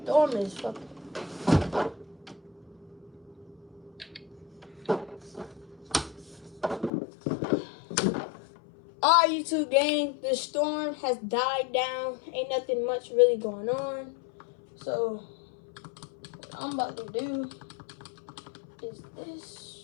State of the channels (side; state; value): right; drops out; at 6.9 s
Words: storm is fucking. Alright, YouTube gang, the storm has died down. Ain't nothing much really going on. So, what I'm about to do is